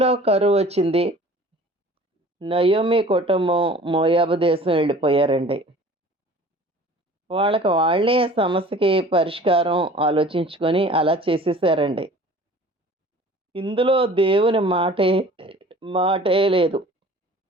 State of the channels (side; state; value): both; normal; correlation 0.46